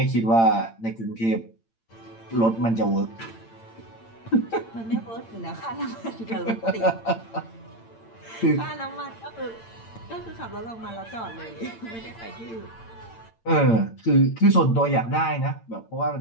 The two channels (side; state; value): right; late; 8.8 ms